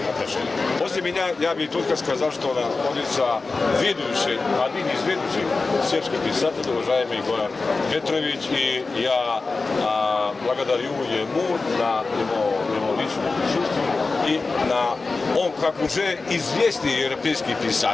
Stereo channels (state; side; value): quieter; right; 3.8 dB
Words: отношений. После меня я бы только сказал, что находится один из ведущих сербских писателей, уважаемый Goran Petrović, и я благодарю ему на его личное присутствие и он, как уже известный европейский